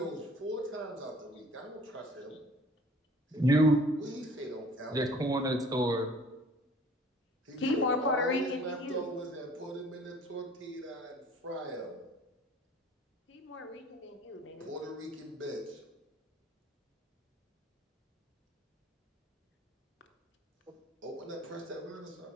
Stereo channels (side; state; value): both; normal; correlation 0.52